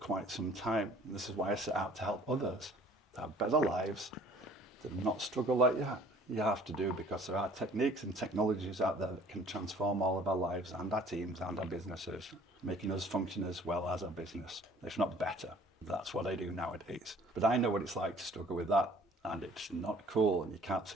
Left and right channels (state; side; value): normal; both; correlation 0.53